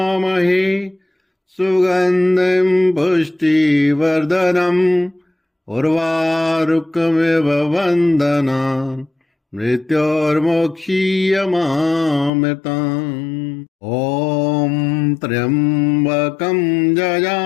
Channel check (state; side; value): drops out; right; at 12.3 s